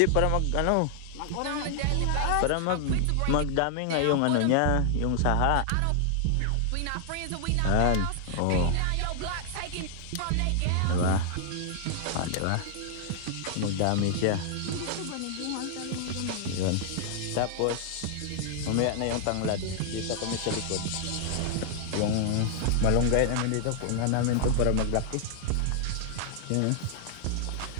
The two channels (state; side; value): different; both; correlation 0.00